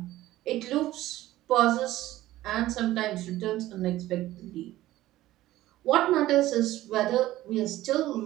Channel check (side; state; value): left; quieter; 15.6 dB